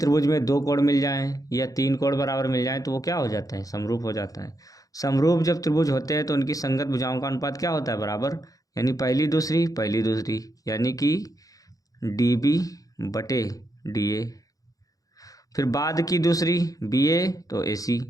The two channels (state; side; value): late; right; 0.17 ms